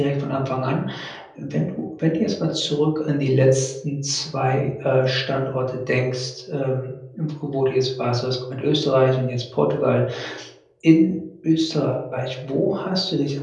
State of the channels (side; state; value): both; identical; correlation 1.00